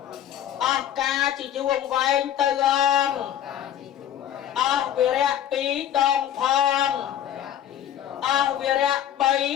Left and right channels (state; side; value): quieter; right; 10.6 dB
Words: អស់ការជាយូរវែងទៅអស់វិរៈ2ដងផងអស់វិរៈ